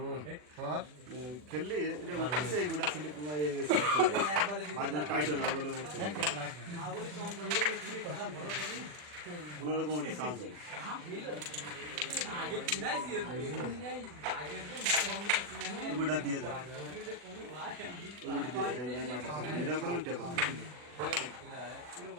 স্যার খেললি এটা উঠছে এই গোটা স্লিপ মাঝে টাইট হয় না বলে উঠছে কোনোরকম ওটি চান্স হয় ওটা দিয়ে যাবে ওটি দিয়ে যাবে এটা কোনো টেপল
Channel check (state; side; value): late; left; 40 ms